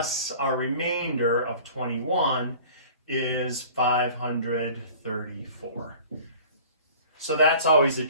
our remainder of 21 is 534. So that's always a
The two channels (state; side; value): inverted; both; correlation -0.45